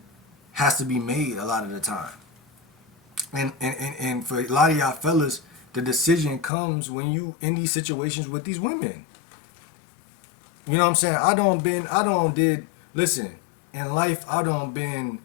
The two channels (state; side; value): drops out; right; at 6.5 s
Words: has to be made a lot of the time. And for a lot of y'all fellas, the decision comes when you in these situations with these women. You know what I'm saying? Listen, in life, I don't been